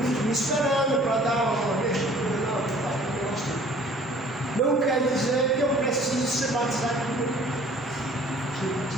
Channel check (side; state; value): both; normal; correlation 0.52